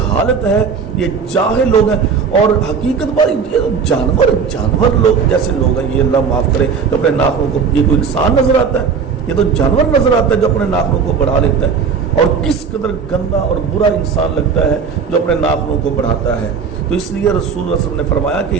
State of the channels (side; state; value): left; quieter; 6.0 dB